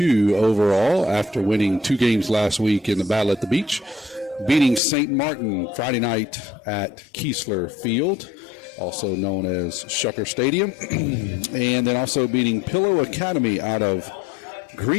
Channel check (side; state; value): right; drops out; at 4.8 s